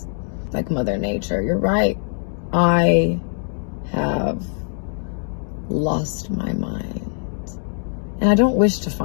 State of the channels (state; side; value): silent; right; 64 dB below the other